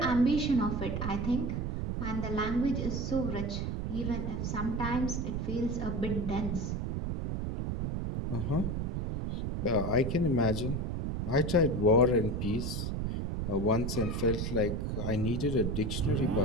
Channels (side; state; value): right; noise; rumble, 2 dB below the sound